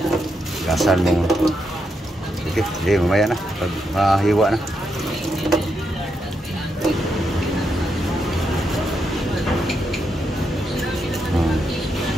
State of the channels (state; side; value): normal; both; correlation 0.82